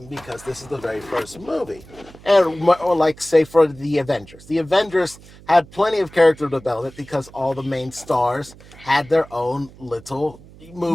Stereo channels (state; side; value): noise; right; hum, 21 dB below the sound